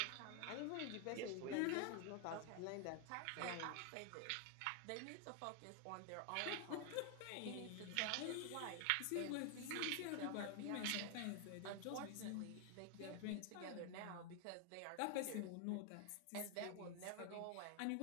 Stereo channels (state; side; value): different; both; correlation 0.00